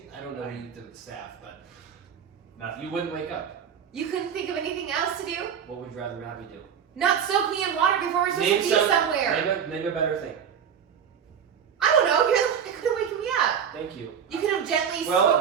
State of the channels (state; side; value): quieter; left; 7.9 dB